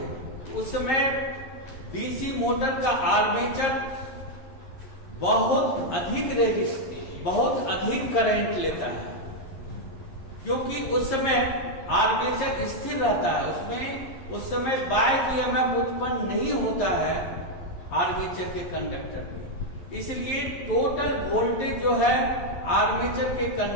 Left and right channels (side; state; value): right; late; 11 ms